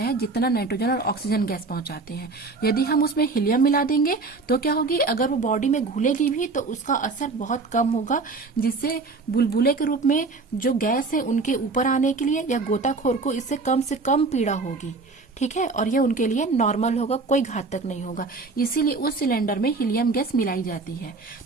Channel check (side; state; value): left; quieter; 3.9 dB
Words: है जितना नाइट्रोजन और ऑक्सीजन गैस पहुंचाते हैं। यदि हम उसमें हीलियम मिला देंगे तो क्या होगी? अगर वो बॉडी में घुलेगी भी तो उसका असर बहुत कम होगा, जिससे बुलबुले के रूप में जो गैस है उनके ऊपर आने के लिए या गोताखोर को इससे कम से कम पीड़ा होगी, ठीक है। और ये उनके लिए नॉर्मल होगा, कोई घातक नहीं होगा। इसीलिए उस सिलेंडर में हीलियम गैस मिलाई जाती है।